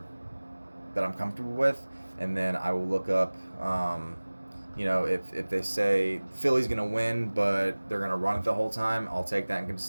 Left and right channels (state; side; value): inverted; both; correlation -1.00